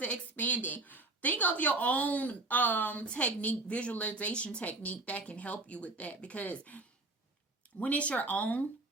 it expanding. Think of your own technique, visualization technique that can help you with that, because when it's your own,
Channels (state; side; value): quieter; left; 3.0 dB